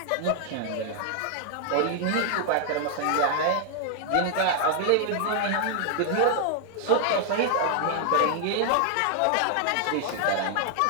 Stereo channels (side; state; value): both; different; correlation 0.00